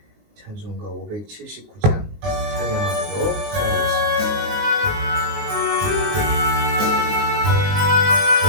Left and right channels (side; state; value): left; late; 19 ms